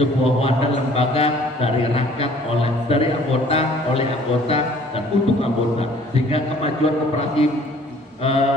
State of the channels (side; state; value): both; normal; correlation 0.55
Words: wadah lembaga dari rakyat dari anggota oleh anggota dan untuk anggota, sehingga kemajuan koperasi